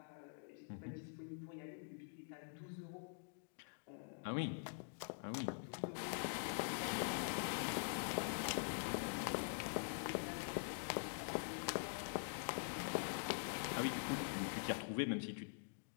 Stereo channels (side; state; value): right; silent; digital silence